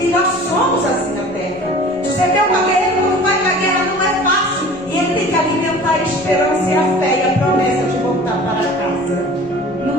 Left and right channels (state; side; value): noise; left; rumble, 24 dB below the sound